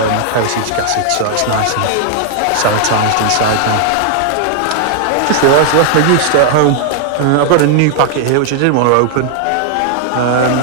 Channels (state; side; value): different; both; correlation 0.00